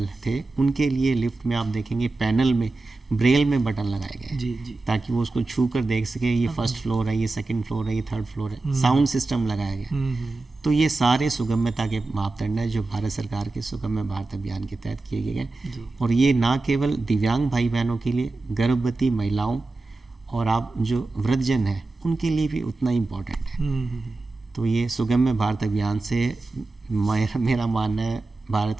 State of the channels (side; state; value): left; quieter; 3.3 dB